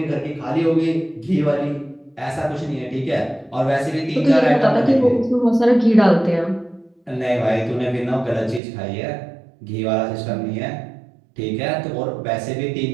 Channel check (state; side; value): drops out; left; at 8.6 s